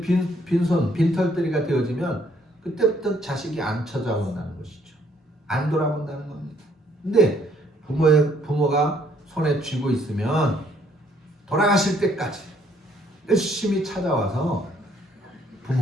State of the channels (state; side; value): normal; both; correlation 0.66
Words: 빈털터리가 되어지면 그때부터 자식이 안 찾아온다는 것이죠. 안 돌아본다는 겁니다. 근데 부모가 손에 쥐고 있으면 돌아가실 때까지 열심히 찾아와서